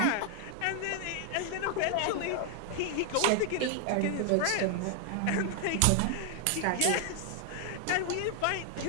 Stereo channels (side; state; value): both; different; correlation 0.00